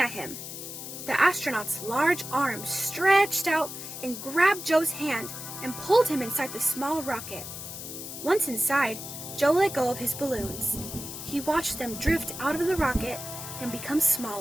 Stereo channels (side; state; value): left; noise; hiss, 9 dB below the sound